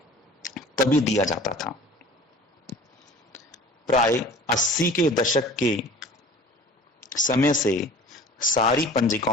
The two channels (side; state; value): both; normal; correlation 0.44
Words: तभी दिया जाता था। प्राय 80 के दशक के समय से सारी